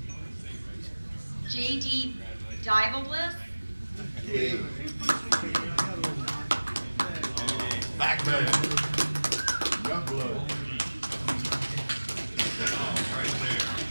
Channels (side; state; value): both; inverted; correlation -1.00